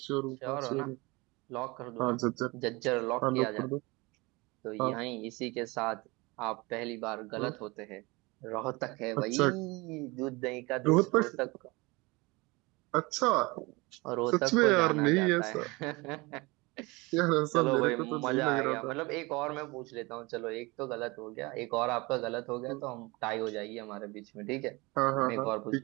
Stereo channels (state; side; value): quieter; left; 24.6 dB